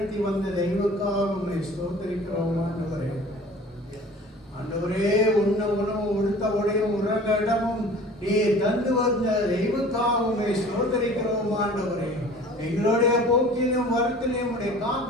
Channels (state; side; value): normal; both; correlation 0.45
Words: வந்த தெய்வக்காக ஸ்தோத்தரிக்கிறோம் ஆண்டவரே. ஆண்டவரே, உண்ண உணவு உடுத்த உடையும் உறங்க இடமும் நீ தந்து வந்த தெய்வக்காகவே ஸ்தோத்தரிக்கிறோம் ஆண்டவரே. எங்களுடைய போக்கிலும் வருத்திலும் உடைய